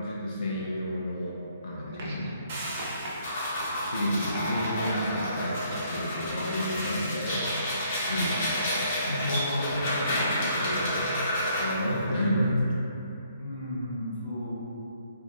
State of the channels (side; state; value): both; inverted; correlation -0.66